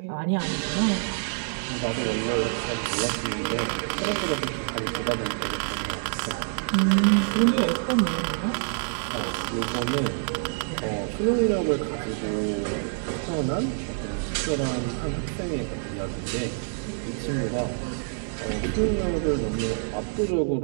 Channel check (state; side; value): silent; left; digital silence